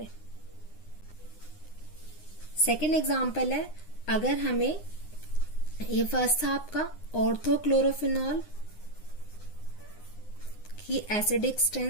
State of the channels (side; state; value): right; late; 9.7 ms